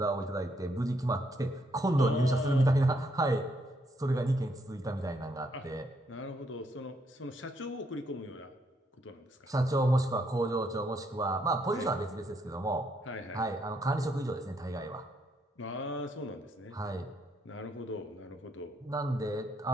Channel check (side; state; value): both; normal; correlation 0.74